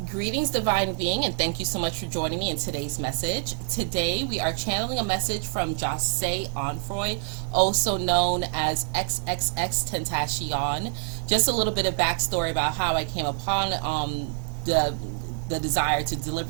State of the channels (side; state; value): left; silent; digital silence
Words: Greetings, Divine Being, and thank you so much for joining me in today's message. Today, we are channeling a message from Jahseh Onfroy, also known as XXXTentacion. Just a little bit of backstory about how I came upon the desire to